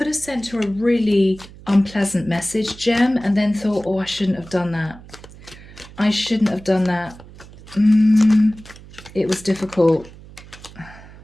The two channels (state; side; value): noise; right; hum, 19 dB below the sound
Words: have sent her a really unpleasant message, Gem, and then thought, oh, I shouldn't have done that. I shouldn't have done that. It was difficult.